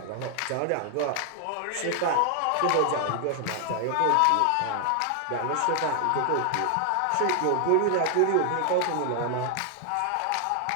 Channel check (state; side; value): different; both; correlation 0.00